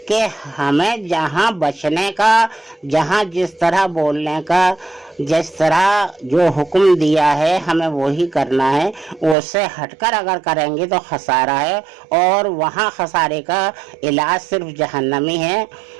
کہ ہمیں جہاں بچنے کا، جہاں جس طرح بولنے کا، جس طرح جو حکم دیا ہے ہمیں وہی کرنا ہے، اس سے ہٹ کر اگر کریں گے تو خسارہ ہے، اور وہاں خسارے کا علاج صرف جہنمی ہے۔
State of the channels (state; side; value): drops out; left; at 9.3 s